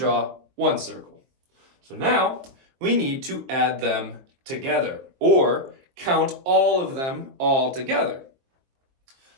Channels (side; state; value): left; late; 23 ms